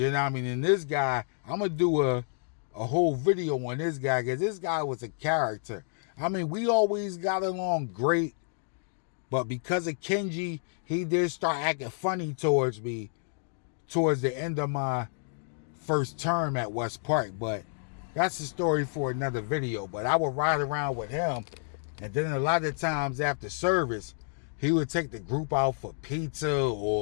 know what I mean? And this guy, I'm going to do a whole video on this guy, because this guy was a character. I mean, we always got along great, but because of Kenji, he did start acting funny towards me towards the end of my first term at West Park. But that's a story for another video. But I would ride around with him, and then a lot of times after service, he would take the group out for pizza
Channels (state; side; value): silent; right; digital silence